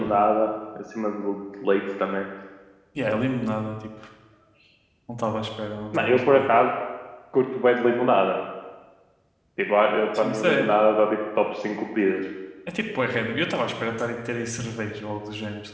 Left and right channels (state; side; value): identical; both; correlation 1.00